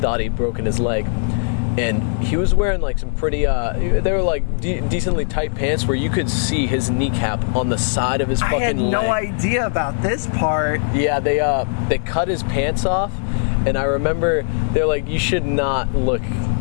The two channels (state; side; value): silent; right; digital silence